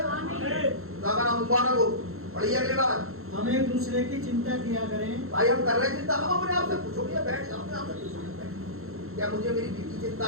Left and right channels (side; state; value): left; late; 0.62 ms